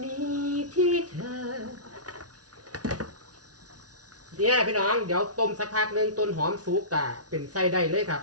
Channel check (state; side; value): late; left; 0.68 ms